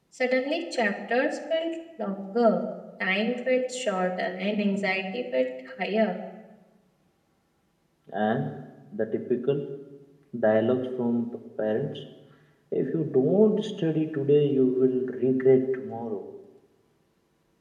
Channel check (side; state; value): both; identical; correlation 1.00